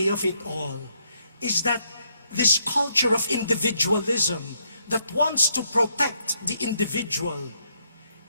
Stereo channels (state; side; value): inverted; both; correlation -0.75